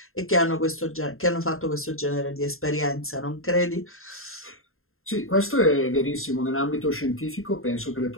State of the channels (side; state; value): right; late; 0.61 ms